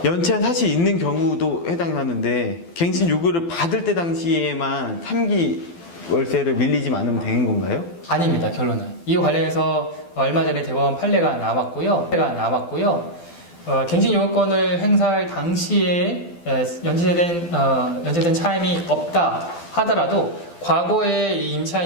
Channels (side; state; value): right; late; 12 ms